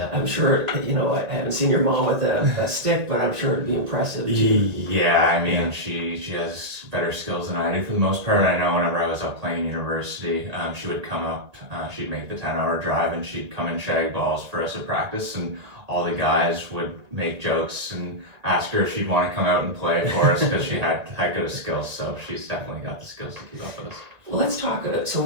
I'm sure, I haven't seen your mom with a stick, but I'm sure it'd be impressive too. Yeah, I mean, she has better skills than I do for the most part. I know whenever I was up playing university, she would come up, she'd make the 10-hour drive, and she'd come and shag balls for us at practice, and all the guys would make jokes and ask her if she'd want to come out and play for us, because she had good skills. So she's definitely got the skills to keep up with us. Well, let's talk. So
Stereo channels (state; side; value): late; left; 1.9 ms